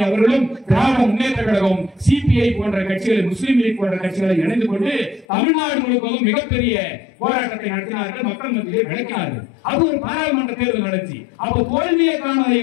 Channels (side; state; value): right; drops out; at 5.2 s